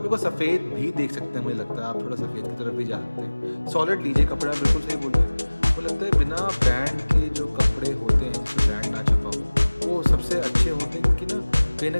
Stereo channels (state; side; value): inverted; both; correlation -1.00